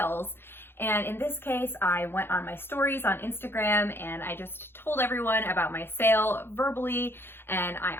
And in this case, I went on my stories on Instagram and I just told everyone about my sale verbally. And I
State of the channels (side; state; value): right; late; 0.11 ms